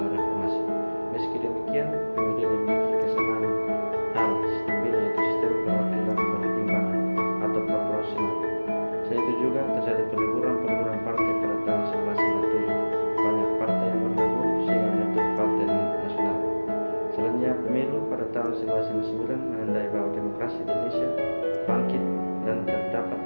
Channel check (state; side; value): inverted; both; correlation -1.00